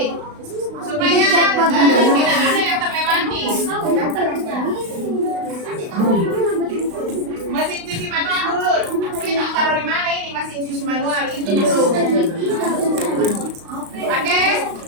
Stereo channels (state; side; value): late; left; 35 ms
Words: Supaya tidak ada yang terlewati. Mesin cuci manual dulu. Kita taruh di mana ini mesin cuci manual itu dulu. Oke,